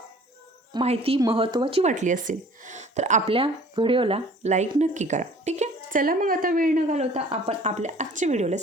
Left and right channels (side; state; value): both; normal; correlation 0.50